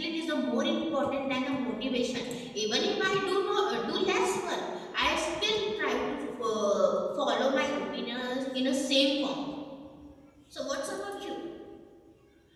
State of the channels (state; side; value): identical; both; correlation 1.00